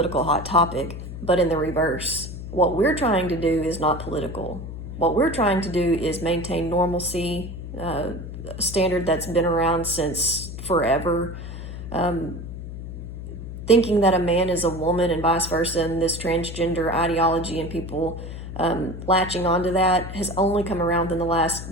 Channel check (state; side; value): noise; left; hum, 9 dB below the sound